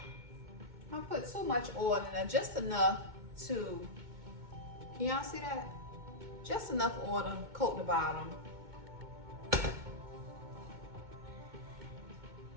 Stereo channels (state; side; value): late; left; 2.2 ms